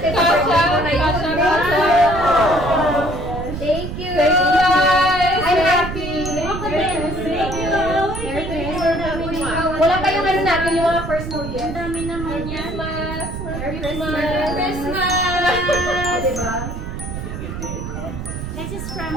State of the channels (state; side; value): noise; right; rumble, 7 dB below the sound